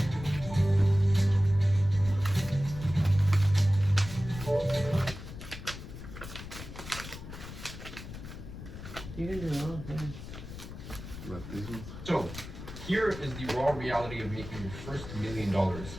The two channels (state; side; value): noise; left; rumble, 11 dB below the sound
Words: You can do all things. Like these ones? So, here is the raw reality of making your first $1 million,